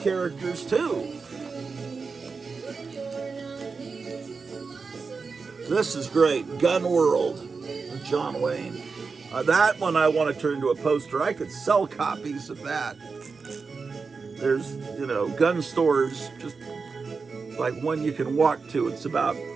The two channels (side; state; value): left; quieter; 4.8 dB